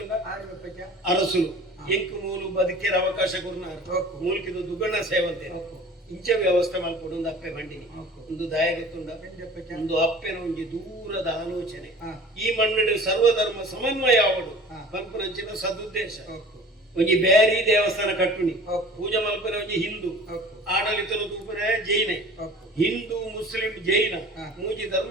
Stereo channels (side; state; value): both; normal; correlation 0.44